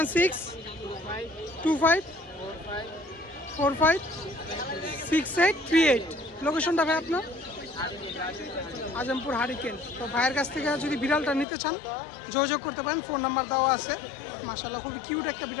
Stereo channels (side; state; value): right; drops out; at 11.5 s